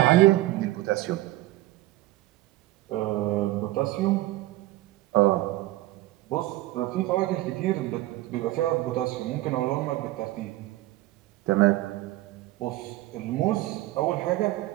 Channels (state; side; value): quieter; left; 17.4 dB